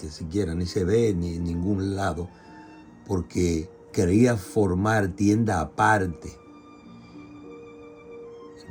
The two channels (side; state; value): both; identical; correlation 1.00